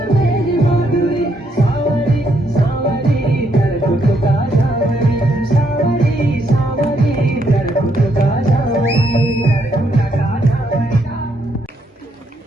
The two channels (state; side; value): normal; both; correlation 0.74